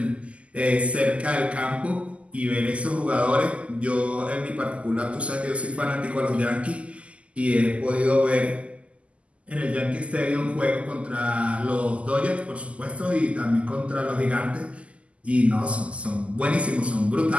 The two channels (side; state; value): left; late; 0.060 ms